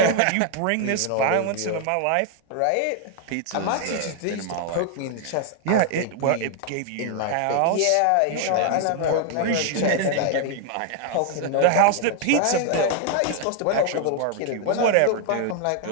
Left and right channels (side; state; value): both; different; correlation 0.00